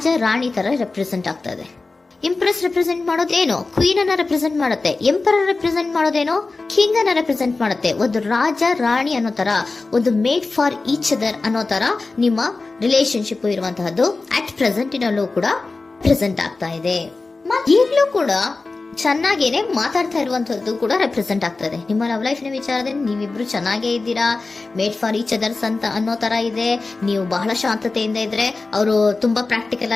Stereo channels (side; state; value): right; quieter; 3.6 dB